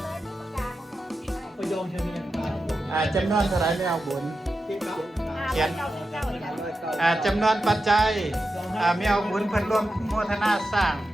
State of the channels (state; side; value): normal; both; correlation 0.90